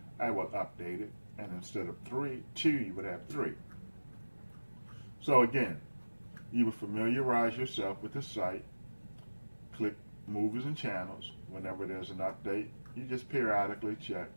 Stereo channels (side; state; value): both; inverted; correlation -1.00